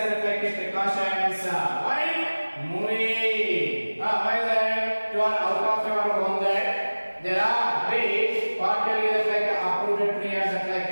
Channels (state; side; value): inverted; both; correlation -1.00